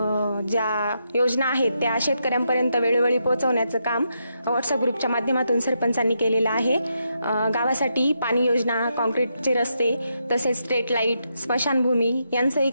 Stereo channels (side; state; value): both; inverted; correlation -0.82